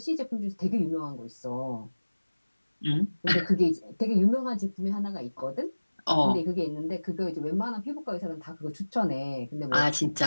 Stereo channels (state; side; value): inverted; both; correlation -1.00